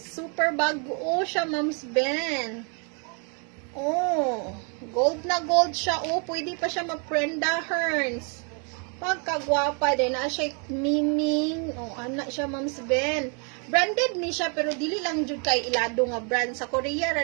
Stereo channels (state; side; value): quieter; left; 37.7 dB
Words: Super bago siya, Mams Ben. Oh. Gold na gold siya. Oh, pwede pa siya mag-Prenda Hearns. Pagkagwapa din. Na siya miming. Oh, anak siya, Mams Ben. Branded ni siya, pero dili lang jud kay ilado nga brand. Sa Korea,